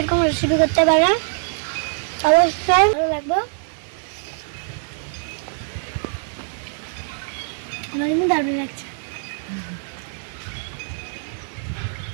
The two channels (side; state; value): left; silent; 63 dB below the other